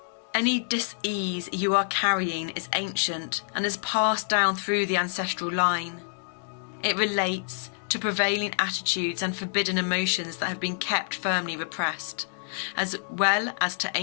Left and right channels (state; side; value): silent; right; 60 dB below the other